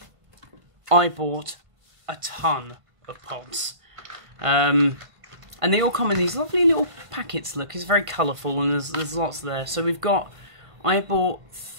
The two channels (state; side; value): late; left; 1.5 ms